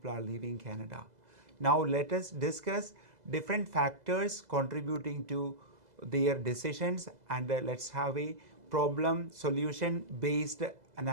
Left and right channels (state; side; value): late; left; 2.0 ms